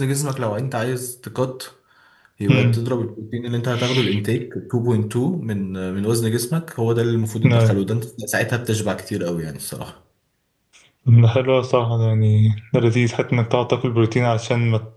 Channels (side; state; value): both; identical; correlation 1.00